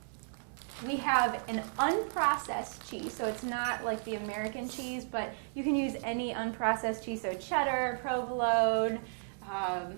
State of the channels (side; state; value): left; silent; digital silence